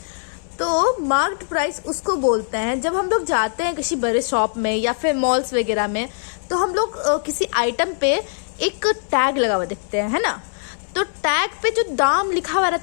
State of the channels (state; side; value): silent; right; 65 dB below the other